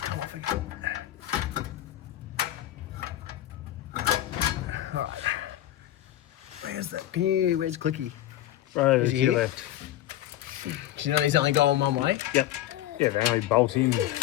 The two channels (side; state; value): right; quieter; 13.7 dB